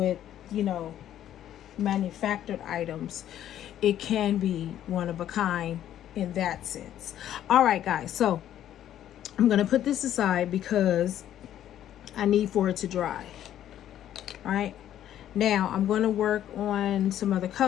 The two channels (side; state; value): right; quieter; 11.4 dB